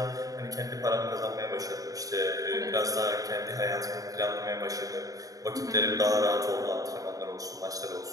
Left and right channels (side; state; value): left; late; 0.17 ms